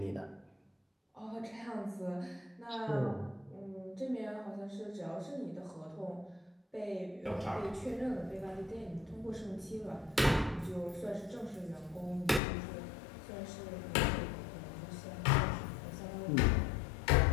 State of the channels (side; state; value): right; drops out; at 12.4 s